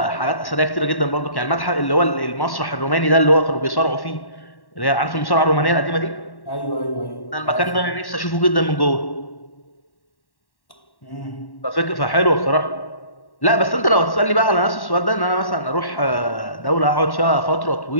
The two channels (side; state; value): right; late; 1.1 ms